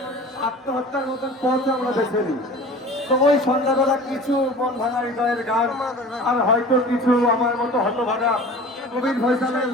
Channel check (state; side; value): normal; both; correlation 0.41